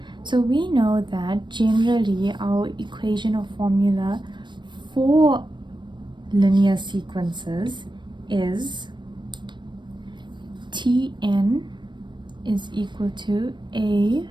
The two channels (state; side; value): late; left; 0.22 ms